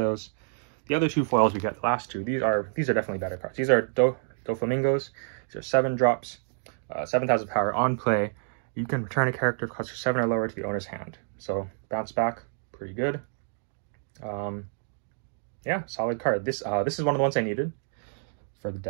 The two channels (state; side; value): silent; left; digital silence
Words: The other 2 foils we get, the last 2, these are definitely better cards. These are Doflamingos. These are 7 drops, 7,000 power on play. You can return a character cost 7 or lower to the owner's hand. So bounce back, pretty good. Yeah, solid card. This is one of the ones I needed for the